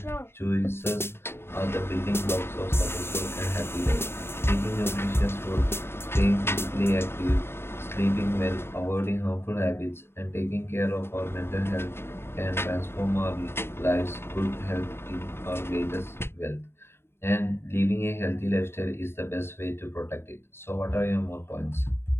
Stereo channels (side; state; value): right; late; 0.12 ms